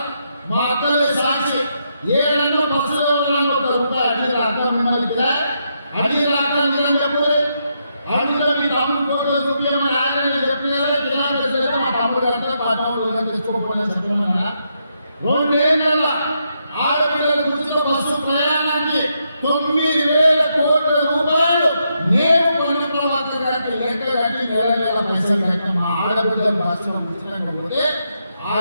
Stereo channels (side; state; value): both; inverted; correlation -0.80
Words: మా అక్కలే సాక్షి ఏడన్నా బస్సులో ₹1 అడిగి రాక మిమ్మల్ని అడిగి రాక నేను చెప్పలే అడిగిన మీ తమ్ముడు ఫోటో చూపించమని ఆయన చెప్పినారే కిరాయితే మా తమ్ముడు అంటే మా తమ్ముడు తెచ్చుకోకపోయినా చెప్పమన్నా 2 ఏళ్ళ ఆడపిల్లలకు ఉచిత బస్సు ప్రయాణానికి ₹9,000 కోట్ల నేను పొన్న ప్రభాకర్ గారికి లెక్క కట్టి నెల పైసలు కట్టిన మా ఆడబిడ్డలు బస్సులో ఉచితంగా పోతే